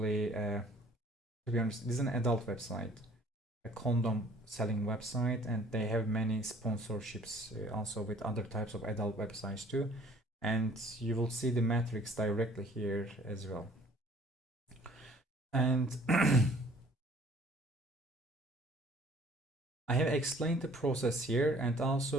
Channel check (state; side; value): normal; both; correlation 0.55